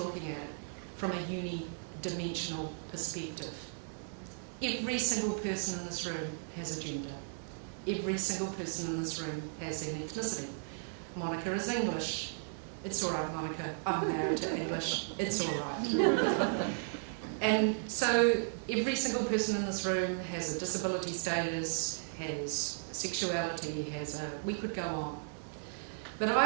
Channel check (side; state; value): left; silent; digital silence